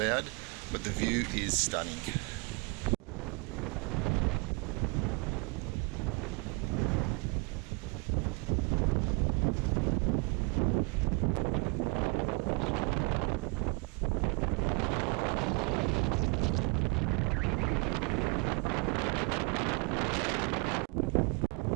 but the view is stunning.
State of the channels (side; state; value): left; quieter; 30.8 dB